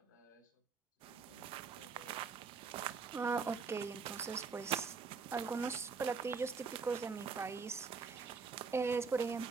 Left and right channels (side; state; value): left; quieter; 5.2 dB